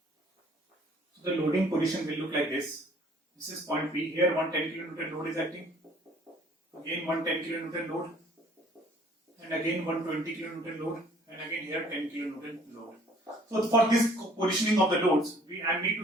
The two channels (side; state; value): both; normal; correlation 0.57